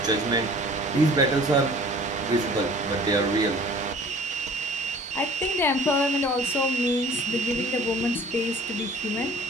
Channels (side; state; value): both; normal; correlation 0.48